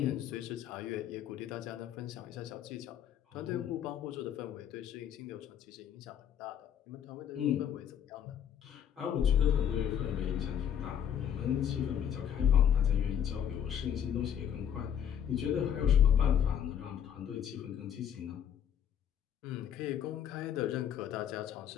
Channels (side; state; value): right; quieter; 9.1 dB